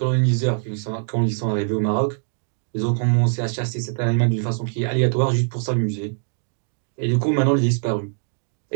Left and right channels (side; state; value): left; silent; digital silence